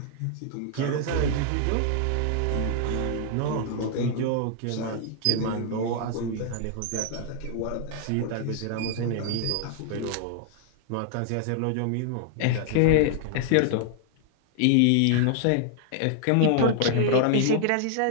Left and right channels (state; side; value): different; both; correlation -0.01